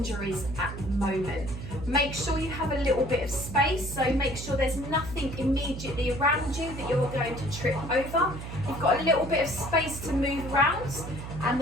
at the moment. Make sure you have a little bit of space, so make sure there's nothing immediately around you that you're going to trip over. You've got a little bit of space to move around,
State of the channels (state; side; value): noise; right; hum, 9 dB below the sound